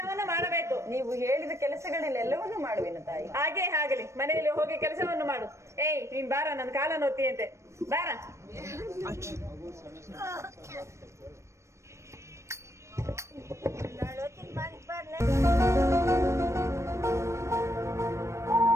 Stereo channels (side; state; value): left; late; 0.14 ms